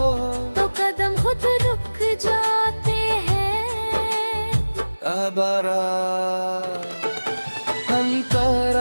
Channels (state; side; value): inverted; both; correlation -1.00